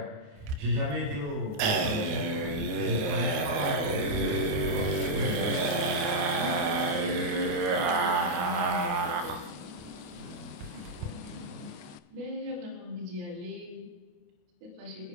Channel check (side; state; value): left; late; 28 ms